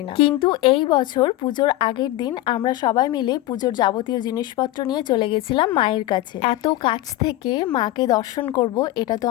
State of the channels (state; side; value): quieter; right; 16.0 dB